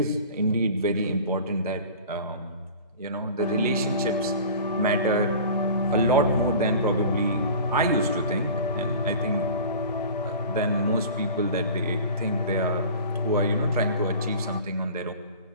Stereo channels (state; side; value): inverted; both; correlation -0.40